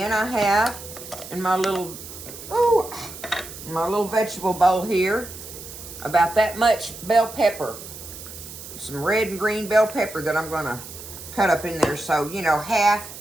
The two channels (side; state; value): right; noise; hiss, 13 dB below the sound